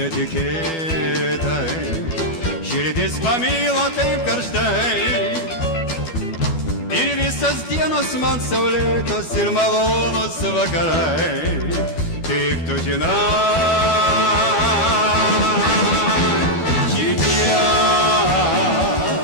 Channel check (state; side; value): late; right; 12 ms